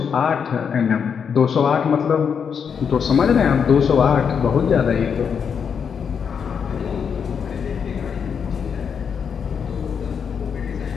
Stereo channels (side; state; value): right; quieter; 6.9 dB